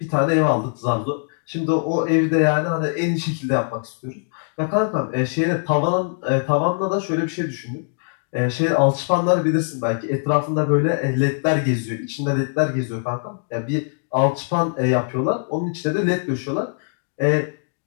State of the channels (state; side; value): silent; right; digital silence